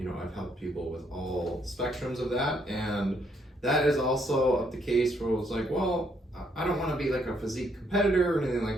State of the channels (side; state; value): both; normal; correlation 0.71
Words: helped people with all spectrums of that. And that is also the case where it's like, well, I don't want to be like a physique competitor or anything